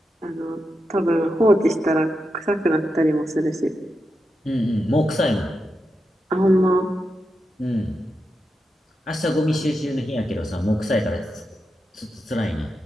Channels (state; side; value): normal; both; correlation 0.88